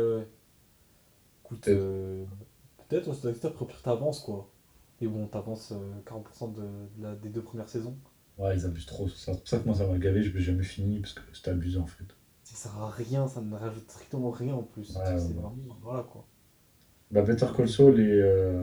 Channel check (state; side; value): identical; both; correlation 1.00